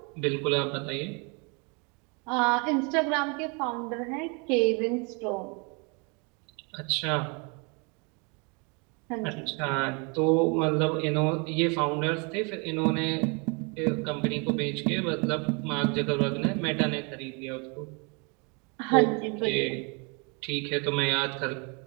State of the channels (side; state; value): left; quieter; 32.7 dB